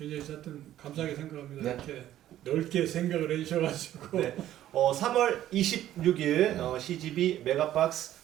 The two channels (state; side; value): quieter; left; 12.7 dB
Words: 하여튼 감사하게 생각합니다. 네. 이렇게 넓게 생각을 해주셔가지고. 네. 3월 26일 CGV 메가박스